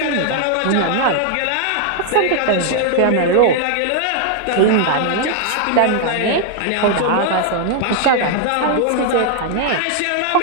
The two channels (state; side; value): different; both; correlation 0.00